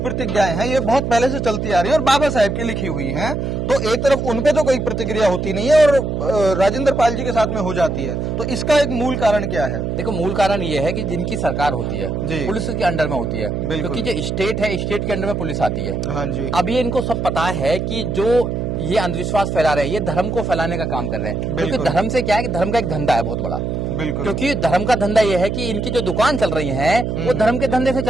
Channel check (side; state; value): right; noise; hum, 2 dB below the sound